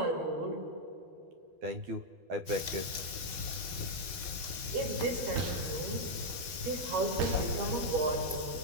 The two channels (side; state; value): left; late; 12 ms